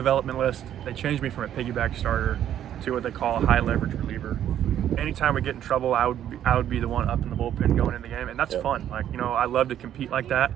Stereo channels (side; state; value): left; quieter; 10.8 dB